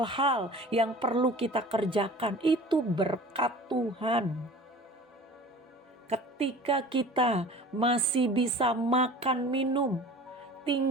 yang perlu kita kerjakan, itu berkat Tuhan. Ketika kita masih bisa makan minum,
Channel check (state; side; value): normal; both; correlation 0.42